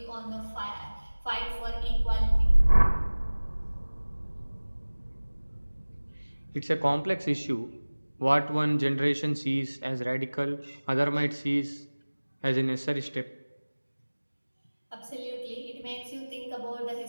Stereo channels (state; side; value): inverted; both; correlation -1.00